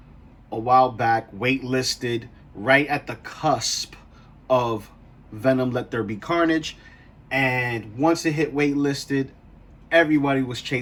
a while back, waitlisted, right at the cusp of Venom Let There Be Carnage. And once it hit waitlisted, everybody was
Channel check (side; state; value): both; identical; correlation 1.00